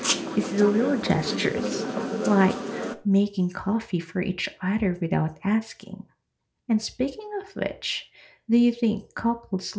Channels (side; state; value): both; identical; correlation 1.00